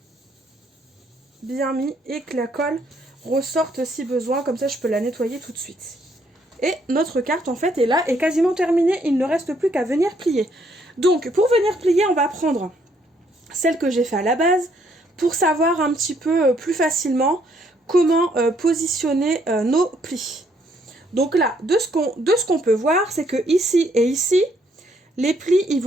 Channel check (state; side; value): normal; both; correlation 0.69